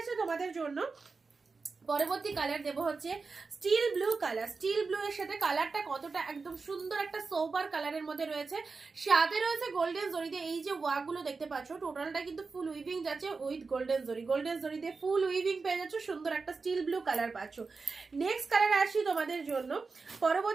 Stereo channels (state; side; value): quieter; left; 4.4 dB